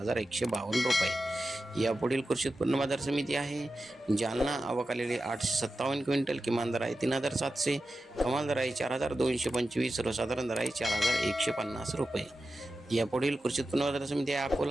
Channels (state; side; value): normal; both; correlation 0.92